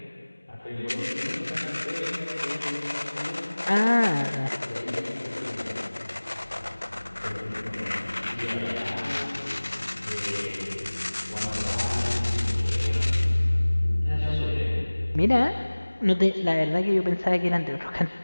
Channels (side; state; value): both; inverted; correlation -1.00